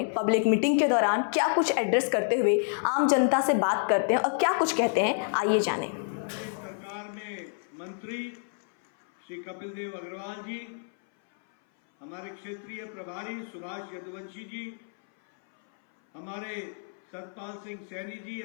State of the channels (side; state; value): right; silent; 57 dB below the other